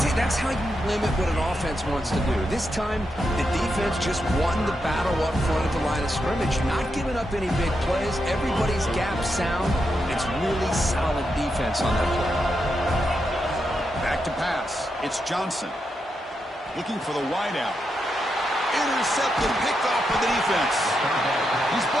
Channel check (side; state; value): both; normal; correlation 0.84